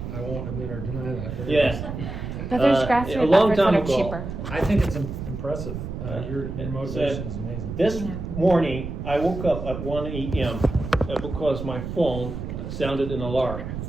I won't admit or deny that. but- Yes. But there's a grassroots long efforts that time are ago. cheaper. I think it's impressive. Your motivation is amazing. This Yeah. morning, I woke up at 1 a.m. Because my phone sounded an alarm,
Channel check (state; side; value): noise; right; rumble, 7 dB below the sound